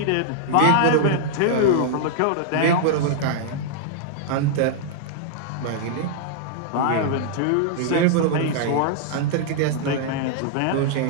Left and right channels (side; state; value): both; different; correlation -0.01